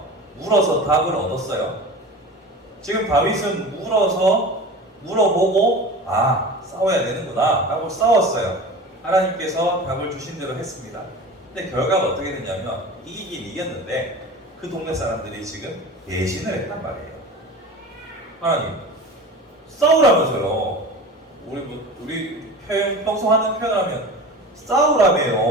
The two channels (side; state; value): both; normal; correlation 0.34